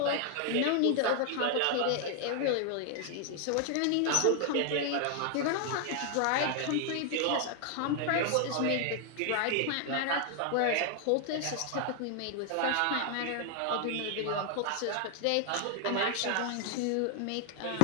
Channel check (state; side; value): different; both; correlation 0.00